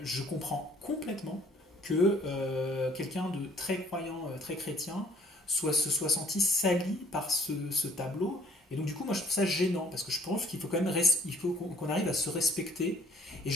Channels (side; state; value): both; normal; correlation 0.60